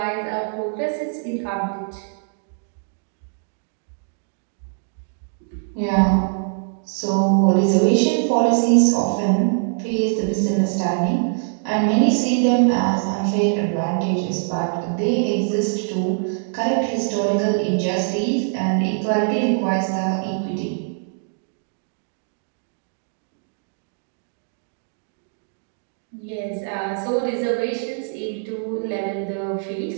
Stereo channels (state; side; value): silent; left; digital silence